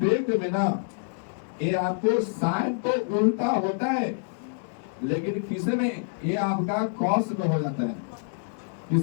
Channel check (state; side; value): silent; right; digital silence